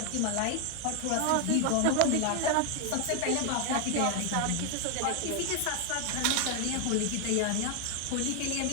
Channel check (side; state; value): both; different; correlation 0.00